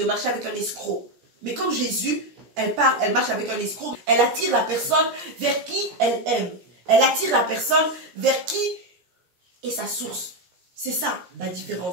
marcher avec un escroc. Mais comme Jésus, elle parle, elle marche avec un escroc. Elle attire la personne vers qui elle aime. Elle attire la personne vers qui est sa source. C'est ça la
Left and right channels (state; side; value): late; left; 17 ms